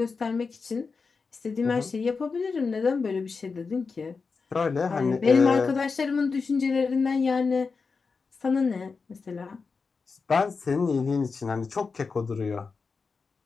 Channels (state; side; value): quieter; right; 4.8 dB